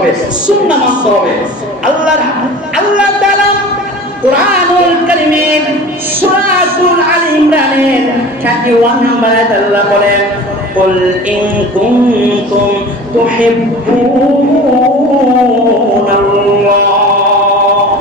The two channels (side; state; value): both; normal; correlation 0.39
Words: সুন্নাহ মানতে হবে। আল্লাহ তাআলা কুরআনুল কারীমের সূরাতুল আলী ইমরানের 31 নম্বর আয়াতে আল্লাহ বলেন কুল ইন কুনতুম তুহিব্বুনাল্লাহ,